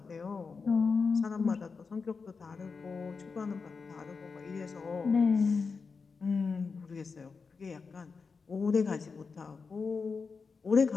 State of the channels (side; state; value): right; quieter; 4.9 dB